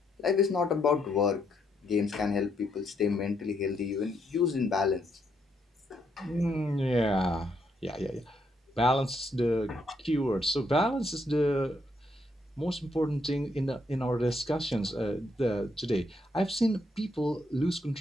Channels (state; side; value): normal; both; correlation 0.75